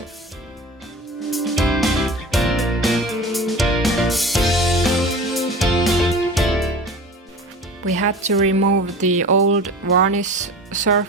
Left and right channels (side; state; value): both; normal; correlation 0.36